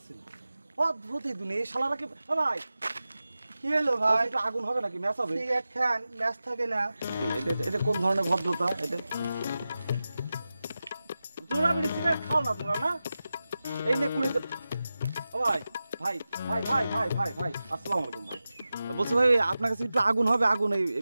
না। অদ্ভুত এই দুনিয়া, এই শালারা কি ভাই কি হলো ভাই? একটু আগুন হবে নাকি? ম্যাচ হবে? সিগারেট খান, ম্যাচ থাকে না। এটা কোন ধরনের ভদ্রতা? এটা তোমরা বিড়ি সিগারেট খাও না তোমরা না? এই নে কুড়ি। ও ভাই ভাই ভাই ভাই ভাই ভাই ভাই আসসালামু আলাইকুম ভাই। বলছি ভাই আপনার কাছে একটু আগুন হবে, আগুন এই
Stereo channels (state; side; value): inverted; both; correlation -0.94